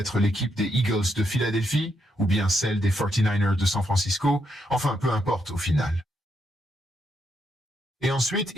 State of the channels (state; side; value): normal; both; correlation 0.79